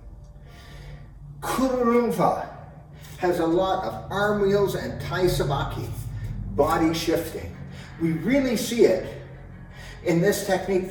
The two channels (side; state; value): both; identical; correlation 1.00